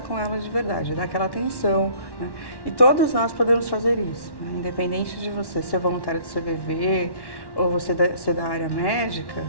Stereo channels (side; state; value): right; late; 1.1 ms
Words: com ela de verdade, dar aquela atenção, né? E todos nós podemos fazer isso, né? Independente de você ser voluntário do CVV ou você ser da área médica,